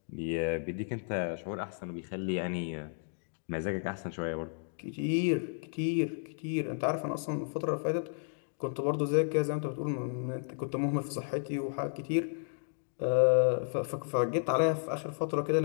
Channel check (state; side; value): silent; right; digital silence